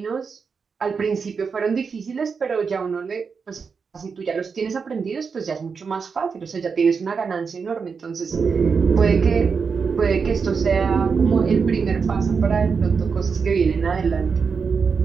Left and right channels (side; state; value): left; quieter; 5.5 dB